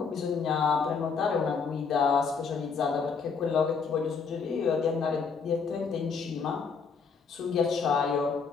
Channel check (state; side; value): quieter; right; 5.5 dB